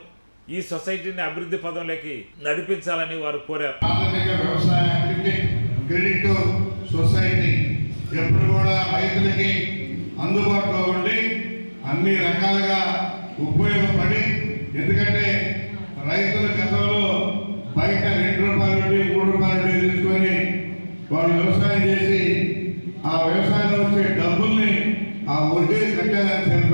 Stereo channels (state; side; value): inverted; both; correlation -1.00